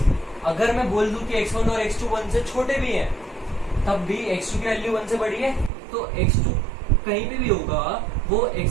अगर मैं बोल दूं कि x1 और x2 1 से छोटे भी हैं, तब भी x2 की वैल्यू 1 से बड़ी है, तो x2 कहीं पे भी होगा वो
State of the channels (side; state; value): left; drops out; at 5.7 s